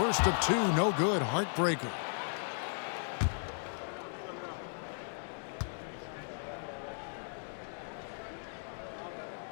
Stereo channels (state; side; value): silent; right; digital silence